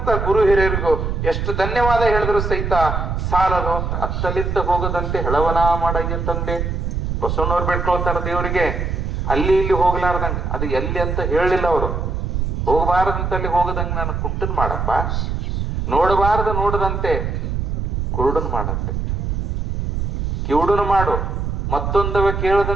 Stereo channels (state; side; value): noise; right; rumble, 1 dB below the sound